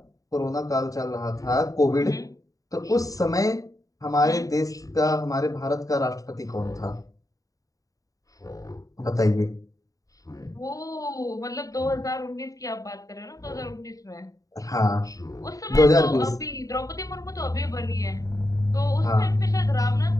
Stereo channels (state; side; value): late; right; 0.17 ms